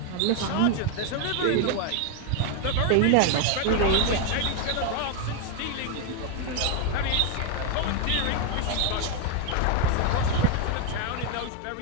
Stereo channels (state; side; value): different; both; correlation 0.01